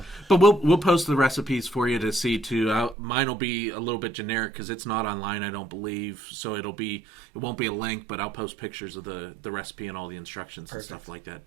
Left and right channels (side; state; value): left; drops out; at 3.0 s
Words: but we'll post the recipes for you to see too. Mine will be a little bit generic because it's not online, I don't believe. So it won't be a link, but I'll post pictures of the recipe and all the instructions and stuff like that